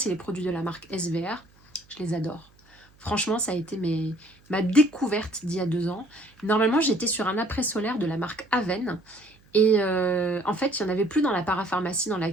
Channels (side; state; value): right; noise; hum, 30 dB below the sound